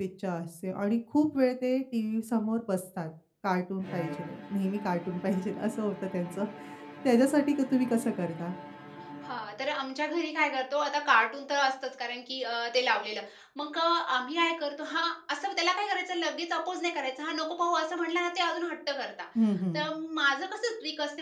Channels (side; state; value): both; identical; correlation 1.00